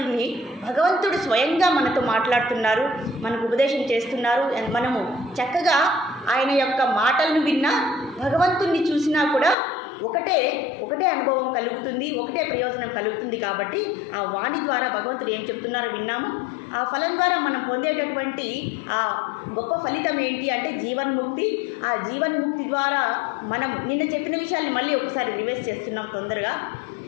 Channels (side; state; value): right; drops out; at 9.6 s